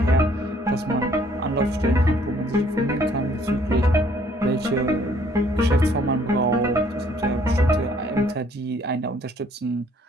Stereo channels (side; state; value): both; normal; correlation 0.62